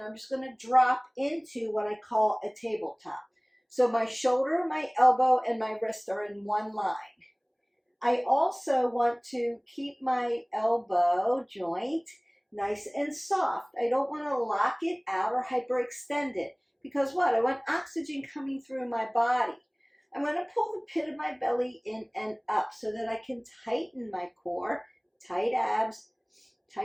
I'm just going to drop into what I call a tabletop. So my shoulder, my elbow, and my wrist are in one line. I also want to keep my elbow joint nice and soft. I don't want to lock it out or hyperextend it. Because what? I want oxygen coming through my body. I'm going to pull the pit of my belly in and up so that I can tighten my core. Tight abs,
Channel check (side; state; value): both; identical; correlation 1.00